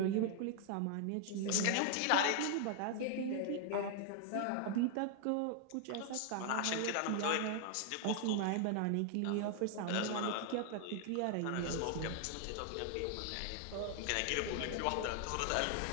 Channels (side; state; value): both; different; correlation 0.00